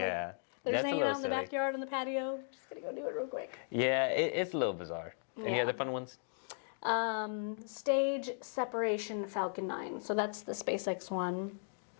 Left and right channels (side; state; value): right; silent; digital silence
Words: they're just hanging out in the silly. backyard on the patio. Just gonna go do it real quick. Yeah, it's a little bizarre. Any other fun ones? Stage separation Falcon 9. So that's the SpaceX one.